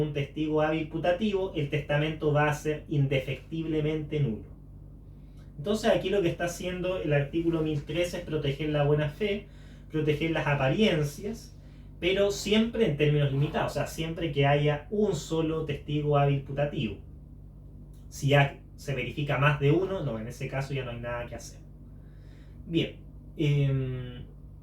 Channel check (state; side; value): identical; both; correlation 1.00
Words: testigo hábil putativo, el testamento va a ser indefectiblemente nulo. Entonces aquí lo que está haciendo el artículo 1013 es proteger la buena fe, proteger las apariencias, pero siempre en términos limitados, o sea, siempre que haya un solo testigo hábil putativo. Si ya se verifica más de uno, no, en ese caso ya no hay nada que hacer. Bien.